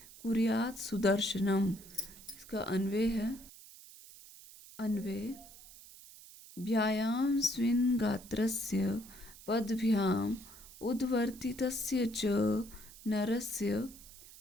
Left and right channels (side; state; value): right; noise; hiss, 19 dB below the sound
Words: कुर्यात् सुदर्शनम्। इसका अन्वय है, अन्वय, व्यायाम स्विन् गात्रस्य पदभ्याम उद्वर्तितस्य च नरस्य